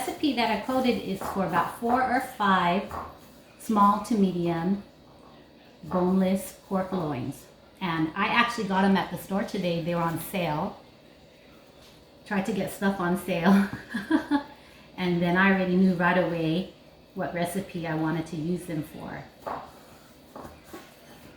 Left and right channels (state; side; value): identical; both; correlation 1.00